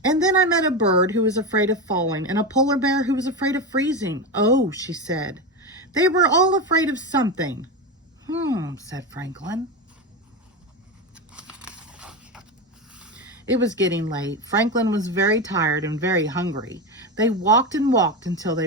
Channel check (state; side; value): normal; both; correlation 0.17